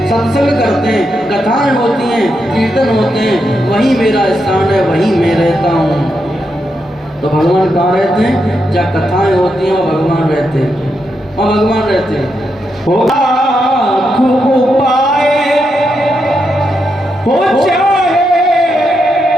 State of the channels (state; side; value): normal; both; correlation 0.83